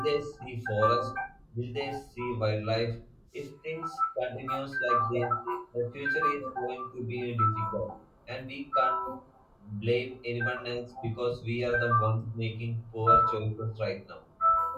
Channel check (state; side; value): identical; both; correlation 1.00